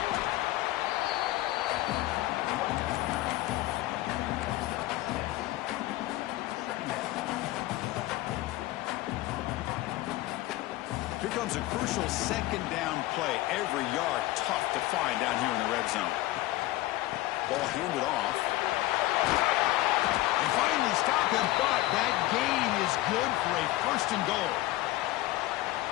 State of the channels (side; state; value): right; quieter; 17.3 dB